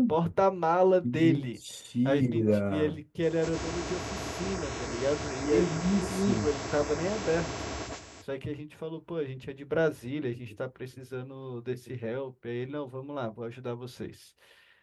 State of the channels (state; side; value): identical; both; correlation 1.00